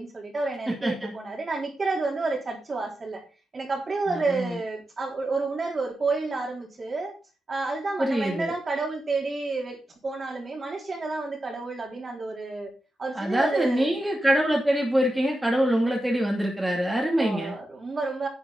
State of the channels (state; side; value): normal; both; correlation 0.90